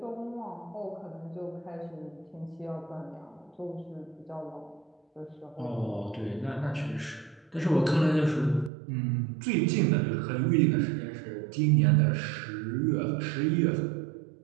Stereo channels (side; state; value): left; drops out; at 8.7 s